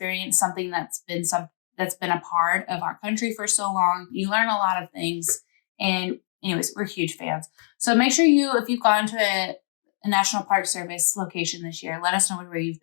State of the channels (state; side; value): silent; right; digital silence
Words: something that's been a part of our country for so long. You learn a lot of things, and anyways, we're huge fans. So make sure if you've gone to a National Park Service location this year, let us know where you've